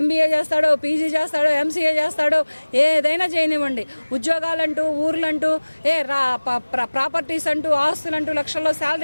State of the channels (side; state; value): both; inverted; correlation -1.00